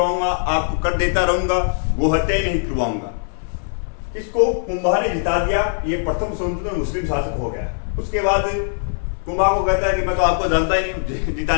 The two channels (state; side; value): silent; right; 59 dB below the other